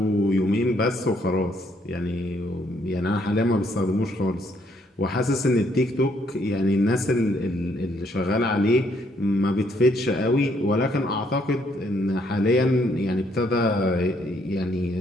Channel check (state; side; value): normal; both; correlation 0.70